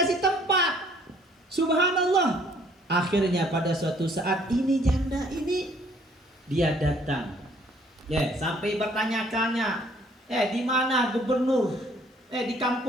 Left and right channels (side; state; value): both; normal; correlation 0.61